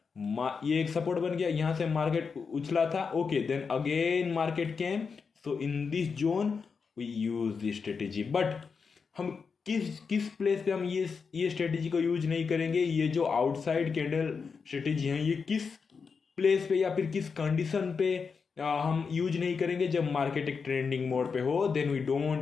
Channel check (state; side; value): quieter; right; 5.4 dB